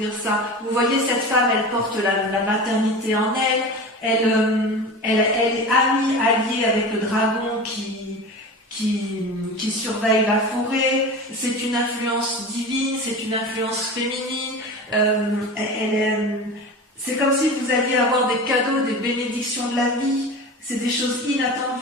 ça? Vous voyez, cette femme, elle porte la maternité en elle est alliée avec le dragon qui surveille la forêt. C'est une influence divine, c'est une influence féminine. C'est comme si vous alliez avoir des cadeaux, des bénédictions de la vie. C'est des choses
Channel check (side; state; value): both; normal; correlation 0.31